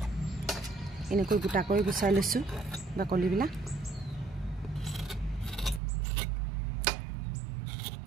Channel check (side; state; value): left; drops out; at 5.8 s